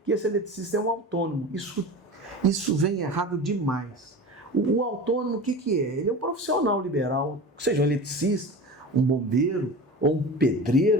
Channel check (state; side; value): normal; both; correlation 0.32